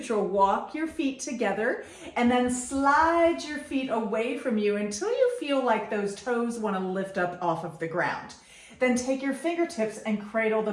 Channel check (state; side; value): identical; both; correlation 1.00